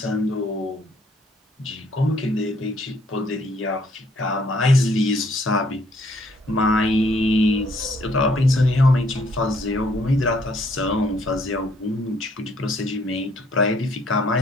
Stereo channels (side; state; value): both; normal; correlation 0.65